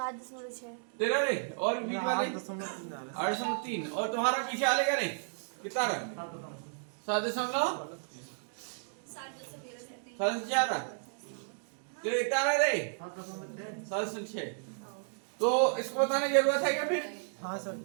तेरा रे और बीच वाले 8.3 आ रहा 8.3 और तुम्हारा पीछे वाले का रे कितना रहा? 7.4 तेरा कितना रहा रे? 7.6 तो इसको बताने की जरूरत है क्या फिर? है हाँ सर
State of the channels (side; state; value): left; silent; digital silence